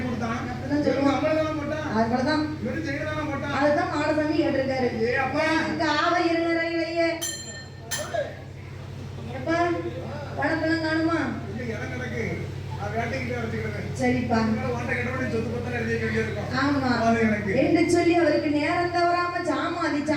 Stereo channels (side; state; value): both; identical; correlation 1.00